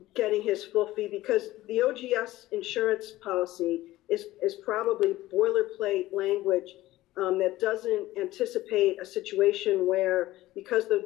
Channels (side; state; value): right; quieter; 16.6 dB